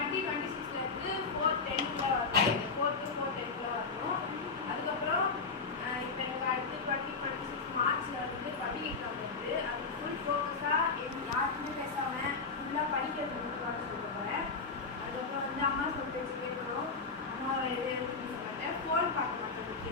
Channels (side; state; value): right; quieter; 4.6 dB